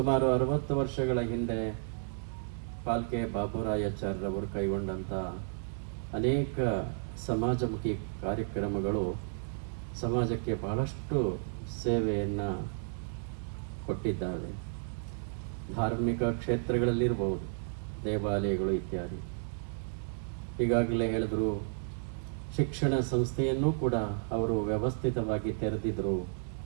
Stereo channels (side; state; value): left; silent; digital silence